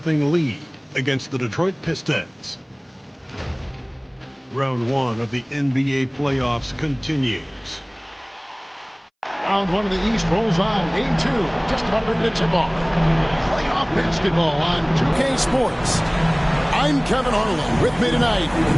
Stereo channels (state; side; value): identical; both; correlation 1.00